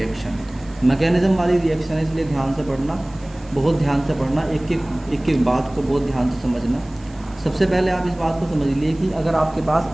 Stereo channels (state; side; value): noise; right; hiss, 27 dB below the sound